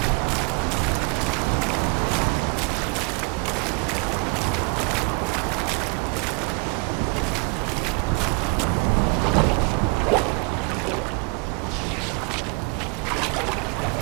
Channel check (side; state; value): left; quieter; 30.2 dB